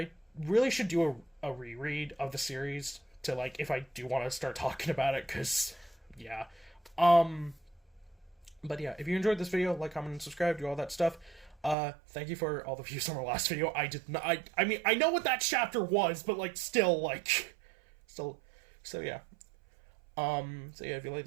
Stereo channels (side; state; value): left; drops out; at 11.8 s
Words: really should do a reread of the series to, like, if I do want to start talking about it, because, yeah. But yeah, if you enjoyed this video, like, comment, and subscribe, do all that stuff. Thank you for all the views on our last video. I did not, I mean, I know what that chapter was, but, like, still, so yeah. So yeah, if you like